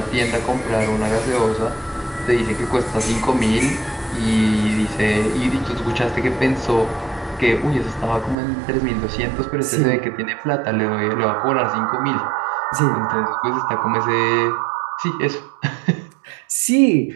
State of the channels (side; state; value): left; drops out; at 8.3 s